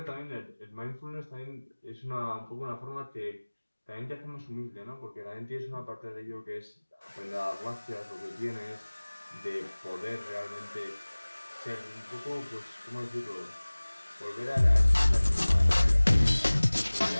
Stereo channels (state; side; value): inverted; both; correlation -1.00